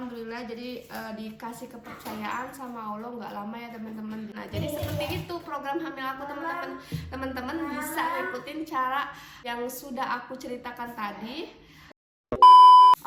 jadi dikasih kepercayaan sama Allah nggak lama ya, teman-teman. Nah, jadi seperti itu program hamil aku, teman-teman. Teman-teman bisa ikutin cara yang sudah aku ceritakan tadi.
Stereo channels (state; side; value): identical; both; correlation 1.00